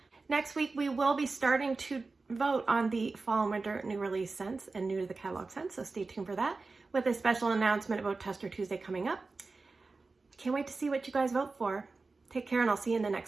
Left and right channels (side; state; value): left; quieter; 3.8 dB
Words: Next week, we will be starting to vote on the fall and winter new release scents and new to the catalog scents, so stay tuned for that. with a special announcement about Tester Tuesday coming up. Can't wait to see what you guys vote for. Take care, and I'll see you in the